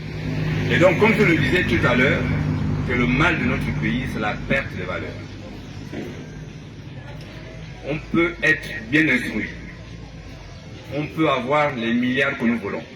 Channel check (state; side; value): identical; both; correlation 1.00